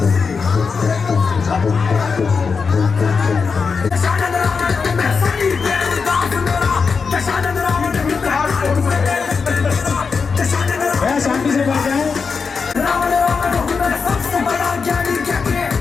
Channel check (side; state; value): right; quieter; 5.3 dB